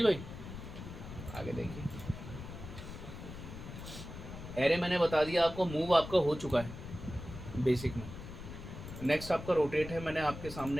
भाई। आगे देखिए, एरे मैंने बता दिया आपको, मूव आपका हो चुका है बेसिक में। नेक्स्ट आपका रोटेट है, मैंने आपके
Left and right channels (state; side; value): noise; left; rumble, 11 dB below the sound